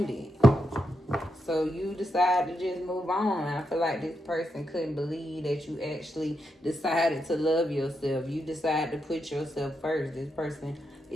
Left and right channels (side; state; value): both; normal; correlation 0.84